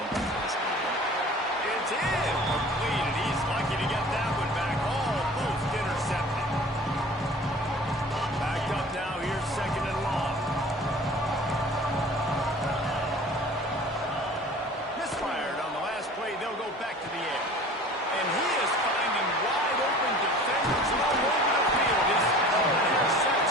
we can possibly do. It's in. Completed. He's lucky to get that one back. Almost intercepted. Backed up now. Here's 2nd and long. Misfired on the last play. They'll go back to the air. And he is finding wide open defenders all over the field. His third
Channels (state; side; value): normal; both; correlation 0.44